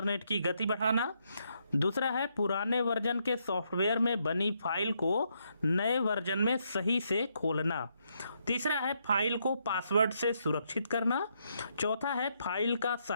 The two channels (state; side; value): inverted; both; correlation -0.77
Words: की गति बढ़ाना, दूसरा है पुराने वर्जन के सॉफ्टवेयर में बनी फाइल को नए वर्जन में सही से खोलना, तीसरा है फाइल को पासवर्ड से सुरक्षित करना, चौथा है फाइल का